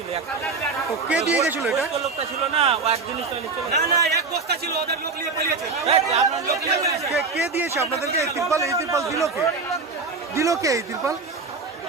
একটা। তো কে দিয়ে গেছিল এটা? ওই লোকটা ছিল না, ও একদিন চলে চলে না না, এক বস্তা ছিল, ওদের লোক নিয়ে পালিয়েছে। আপনার লোক নিয়ে গেছে। কে দিয়েছে আপনাদেরকে এই ত্রিপল? এই ত্রিপল দিল কে? দিল কে এই ত্রিপল?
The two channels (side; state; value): left; quieter; 4.3 dB